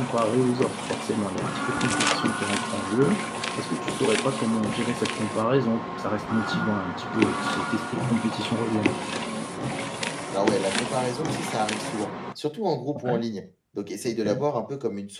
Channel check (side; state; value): both; identical; correlation 1.00